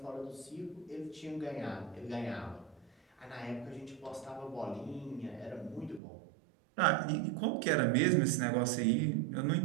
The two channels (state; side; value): drops out; left; at 6.0 s